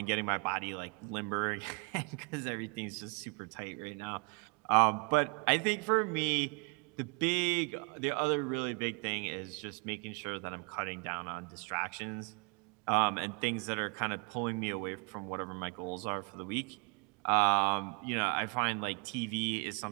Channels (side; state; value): left; quieter; 33.3 dB